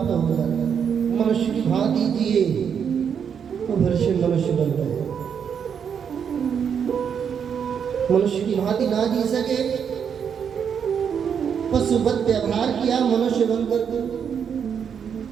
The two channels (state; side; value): quieter; left; 7.4 dB